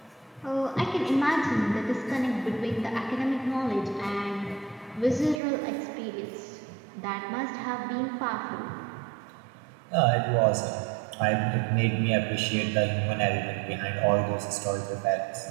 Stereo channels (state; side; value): drops out; left; at 5.4 s